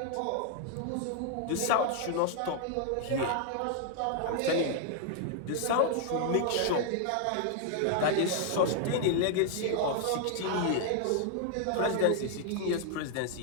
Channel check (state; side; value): different; both; correlation 0.00